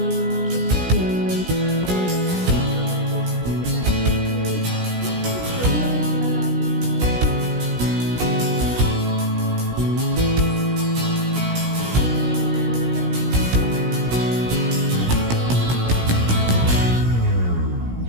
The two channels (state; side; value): late; left; 17 ms